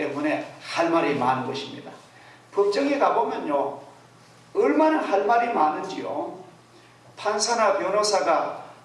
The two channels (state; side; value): identical; both; correlation 1.00